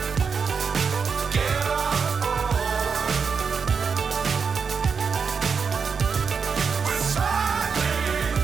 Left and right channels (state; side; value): quieter; left; 5.7 dB